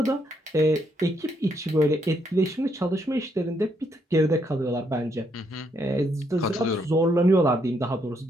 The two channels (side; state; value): both; normal; correlation 0.74